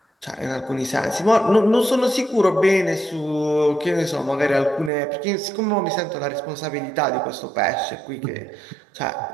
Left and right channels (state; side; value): drops out; left; at 4.9 s